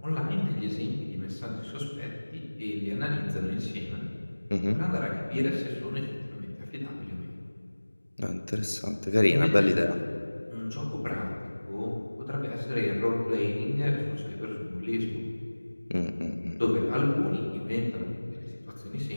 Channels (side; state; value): both; inverted; correlation -1.00